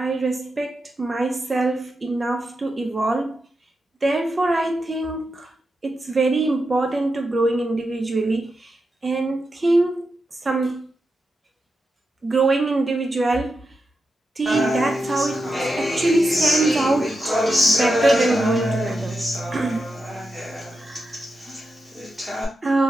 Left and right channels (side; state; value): both; normal; correlation 0.88